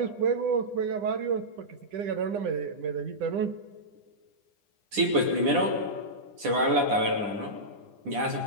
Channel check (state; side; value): late; left; 9.9 ms